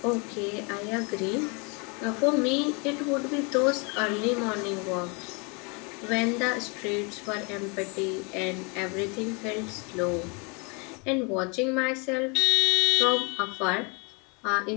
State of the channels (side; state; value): right; quieter; 32.3 dB